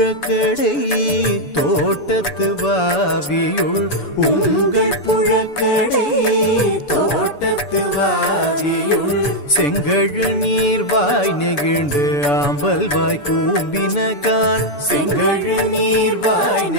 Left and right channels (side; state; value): right; late; 7.0 ms